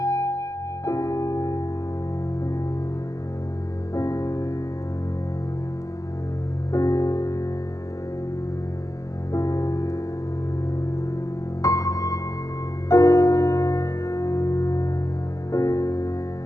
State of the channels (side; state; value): right; late; 0.16 ms